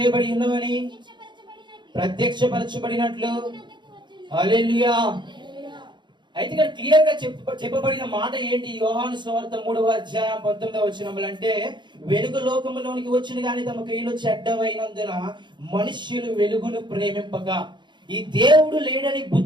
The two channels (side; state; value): left; late; 0.22 ms